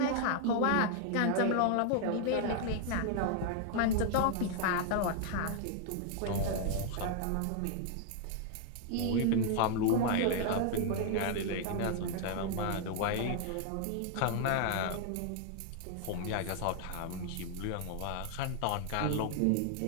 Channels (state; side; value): different; both; correlation 0.00